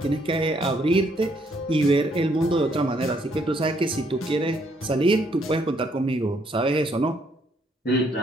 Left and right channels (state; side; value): normal; both; correlation 0.70